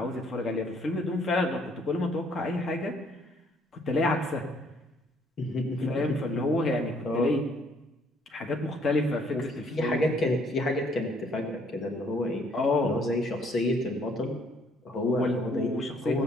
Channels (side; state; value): both; normal; correlation 0.64